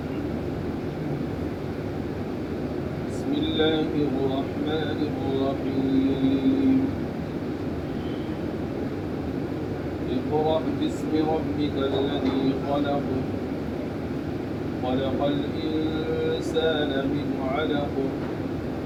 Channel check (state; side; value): identical; both; correlation 1.00